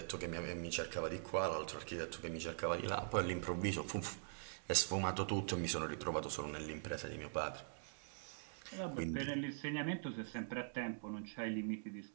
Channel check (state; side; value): silent; left; digital silence